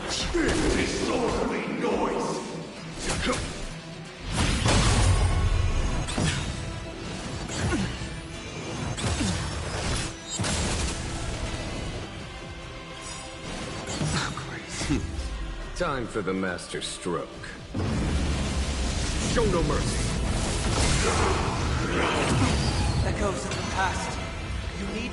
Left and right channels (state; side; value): identical; both; correlation 1.00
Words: Disorderly noise! Time for the master stroke. Show no mercy. Echoes of the past. You need